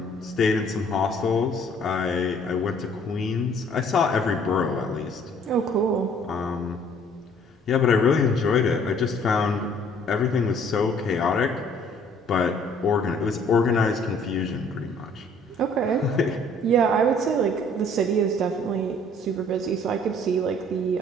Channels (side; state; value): both; normal; correlation 0.58